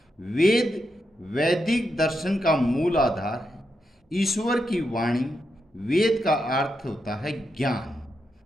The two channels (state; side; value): normal; both; correlation 0.84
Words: वैदिक दर्शन का मूल आधार है ईश्वर की वाणी। वेद का अर्थ होता है ज्ञान।